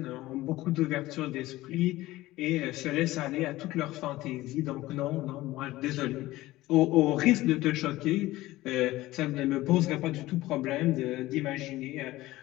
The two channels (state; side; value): quieter; right; 17.4 dB